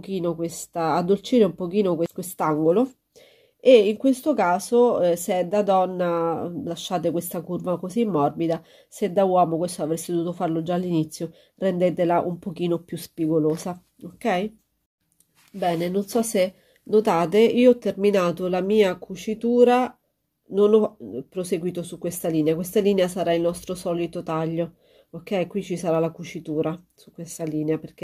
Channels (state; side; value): identical; both; correlation 1.00